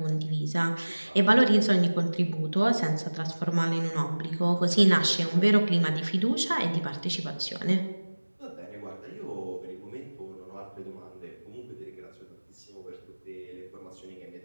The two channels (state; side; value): inverted; both; correlation -1.00